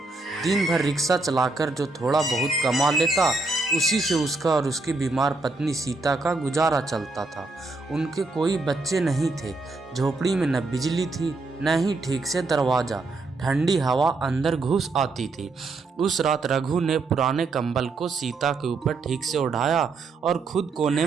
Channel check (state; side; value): quieter; left; 3.6 dB